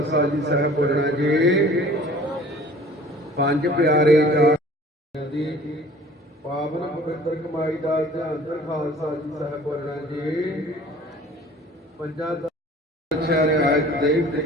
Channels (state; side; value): normal; both; correlation 0.49